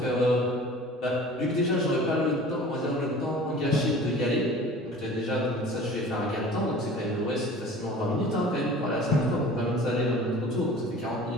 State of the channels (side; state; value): both; normal; correlation 0.43